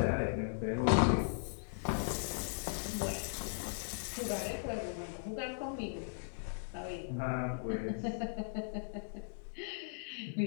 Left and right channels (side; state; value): right; silent; 52 dB below the other